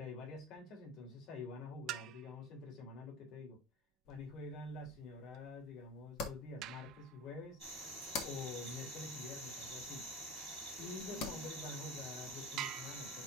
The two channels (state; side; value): normal; both; correlation 0.31